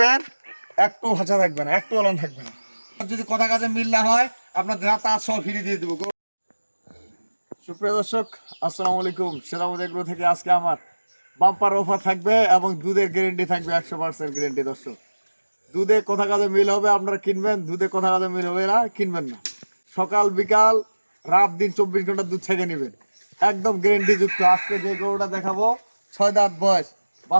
একটু ভাষা থাকবে না, একটু অলন থাকবে না। যদি কথা কাজে মিল না হয় আপনার যা তা সব ফিরিয়ে দিয়ে দেবো। সুপ্রিয় দর্শক, আসসালামু আলাইকুম। সেরামতি এগ্রো থেকে আজকে আমার বাম্পার অফার থাকবে এবং দুধের গ্যারেন্টি থাকবে 100% গ্যারেন্টি। দর্শক, দুধে কথা কাজে মিল হবে আপনারা কিনবেন, দুধে কথা কাজে মিল হবে না কিনবেন না। সকাল বিকাল রাত দিন 24 ঘন্টা দুধ ছেঁকে নেবেন, একদম গ্যারেন্টি যুক্ত। আজকে যে গরুটা দেখাবো 6 দাঁত বয়স,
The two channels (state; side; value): inverted; both; correlation -1.00